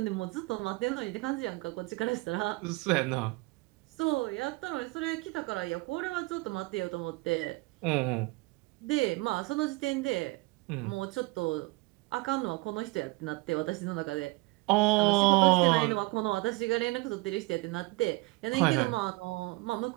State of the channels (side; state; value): left; quieter; 24.0 dB